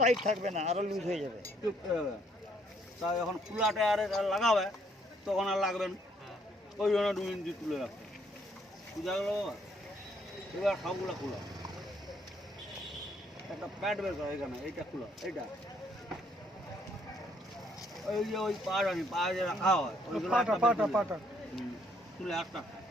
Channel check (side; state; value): both; normal; correlation 0.68